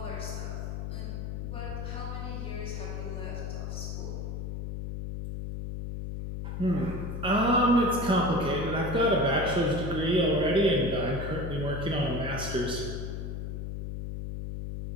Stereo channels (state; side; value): noise; left; hum, 5 dB below the sound